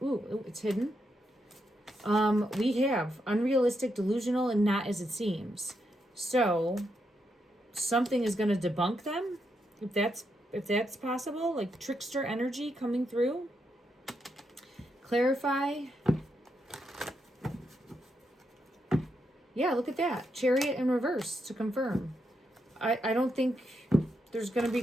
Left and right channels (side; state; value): both; normal; correlation 0.82